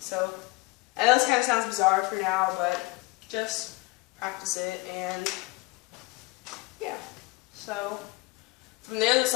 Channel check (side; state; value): right; quieter; 24.8 dB